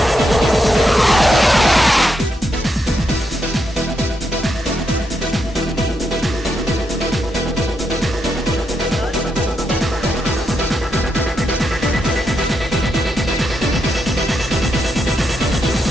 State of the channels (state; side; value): normal; both; correlation 0.81